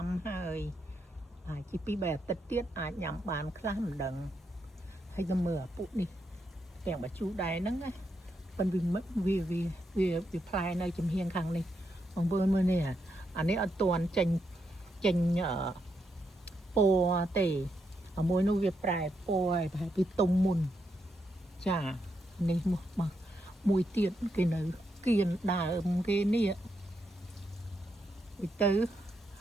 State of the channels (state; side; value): normal; both; correlation 0.81